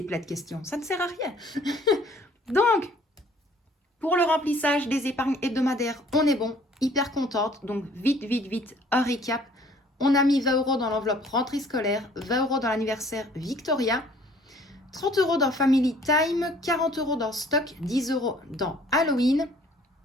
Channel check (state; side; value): normal; both; correlation 0.57